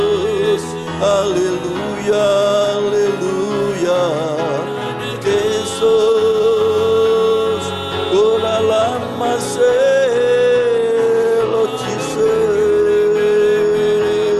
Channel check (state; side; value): identical; both; correlation 1.00